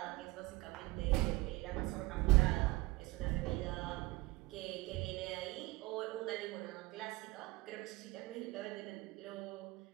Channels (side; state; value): left; quieter; 21.1 dB